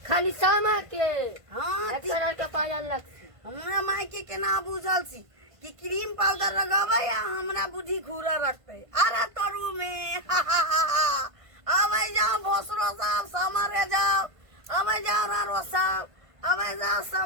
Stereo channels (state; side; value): late; left; 1.5 ms